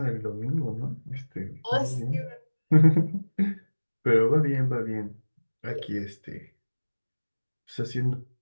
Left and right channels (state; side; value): inverted; both; correlation -1.00